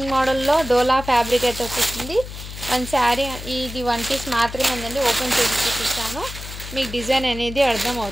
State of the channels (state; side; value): noise; left; hum, 11 dB below the sound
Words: మోడల్లో డోలా ఫ్యాబ్రిక్ అయితే వచ్చేస్తుంది. 1 శారీ ఇది 1 పీస్ మాత్రమే ఉందండి. ఓపెన్ చేసి చూపిస్తాను, మీకు డిజైన్ అనేది అర్థం